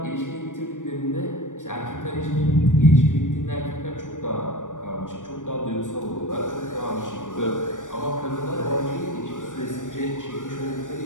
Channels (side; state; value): right; late; 0.87 ms